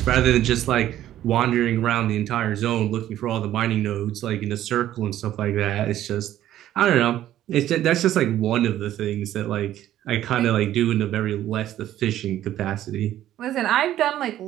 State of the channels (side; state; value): left; quieter; 12.7 dB